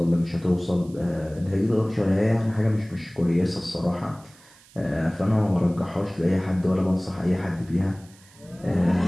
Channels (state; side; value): noise; right; hiss, 26 dB below the sound